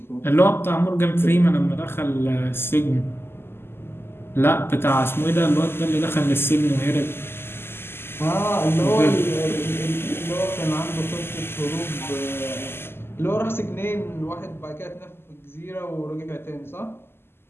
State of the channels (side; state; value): right; late; 0.12 ms